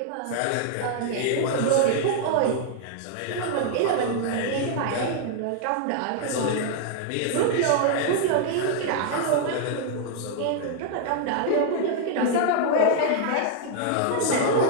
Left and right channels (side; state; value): both; different; correlation -0.01